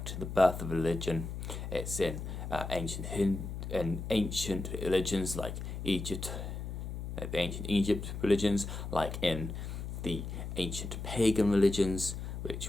to the birth of religion. It's in ancient religions like Egypt, the ancient Egypt religions, like in the ancient pagan religions,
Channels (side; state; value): left; noise; hum, 6 dB below the sound